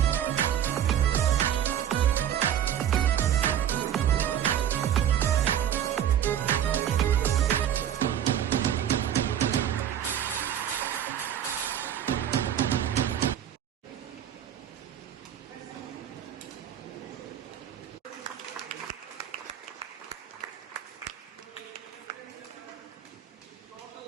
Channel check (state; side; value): quieter; left; 10.1 dB